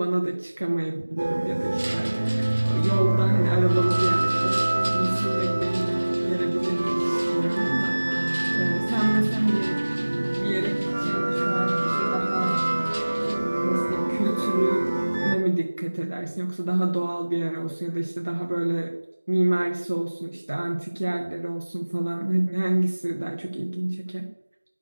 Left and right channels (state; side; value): inverted; both; correlation -1.00